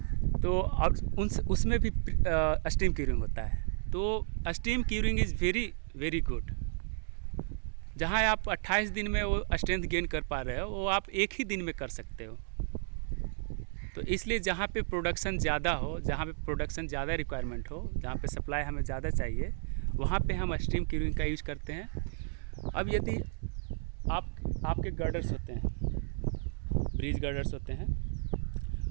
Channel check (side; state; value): left; silent; 56 dB below the other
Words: तो और उसमें भी स्टीम क्यूरिंग होता है। तो steam curing is very very good. जहाँ आप 28 दिन में वो स्ट्रेंथ गेन कर पा रहे हो, वो आप एक ही दिन में कर सकते हो। तो इसलिए जहाँ पे प्रोडक्शन ज़्यादा हो, जहाँ पे प्रोडक्शन ज़्यादा रिक्वायरमेंट हो, जहाँ पे सप्लाई हमें ज़्यादा चाहिए, वहाँ पे हम स्टीम क्यूरिंग का यूज़ करते हैं। अब यदि आपके गर्डर्स होते हैं, ब्रिज गर्डर्स होते हैं,